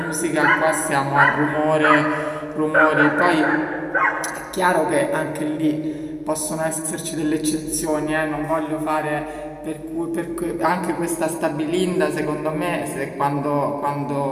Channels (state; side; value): identical; both; correlation 1.00